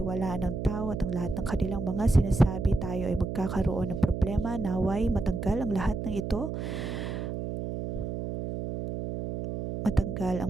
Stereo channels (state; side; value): noise; right; hum, 4 dB below the sound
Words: ng tao at ang lahat ng kanilang mga sinasabi, tayo ay magkakaroon ng problema. Naway matanggal ang lahat ng ito. Matanggal